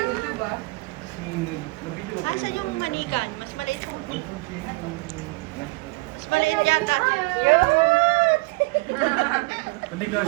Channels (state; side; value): quieter; left; 25.1 dB